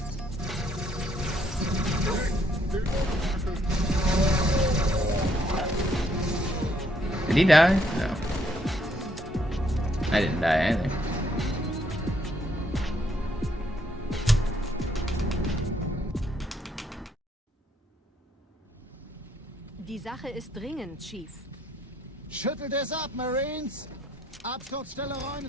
Did he die? No. I didn't die either. Die Sache ist dringend, Chief. Schüttelt es ab, Marines! Absturzstelle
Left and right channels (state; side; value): normal; both; correlation 0.70